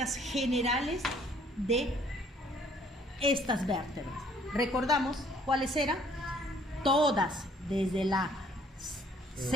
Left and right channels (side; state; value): both; normal; correlation 0.61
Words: generales de estas vértebras. Recordamos cuáles eran. Todas, desde la